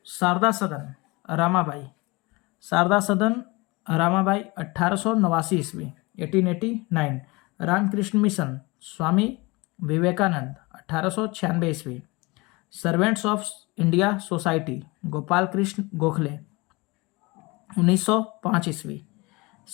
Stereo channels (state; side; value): quieter; right; 24.6 dB